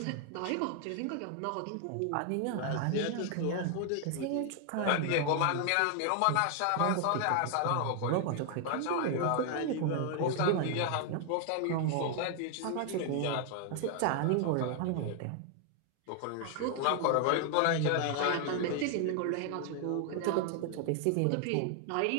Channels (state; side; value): different; both; correlation 0.00